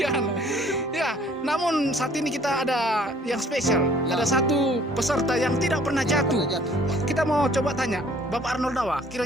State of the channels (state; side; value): normal; both; correlation 0.56